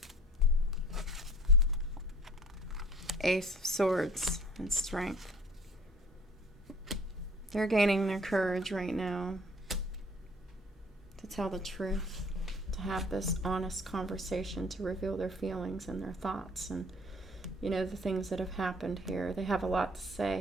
Ace of Swords and Strength. They're gaining their courage right now to tell the truth, to have this honest conversation, to reveal their feelings and their thoughts and, you know, the things that have happened here. They have a lot to say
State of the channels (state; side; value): normal; both; correlation 0.50